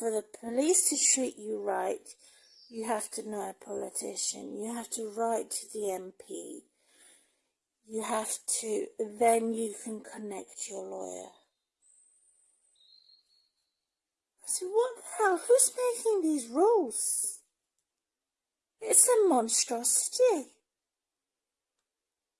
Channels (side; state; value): both; identical; correlation 1.00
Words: the police to treat you right, you have to know a politician. You have to write to the MP. You have to, then you can connect your lawyer. So what the hell? Who's making these rules? It's a monstrosity.